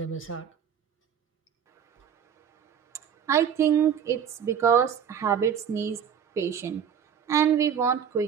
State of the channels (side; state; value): left; quieter; 8.0 dB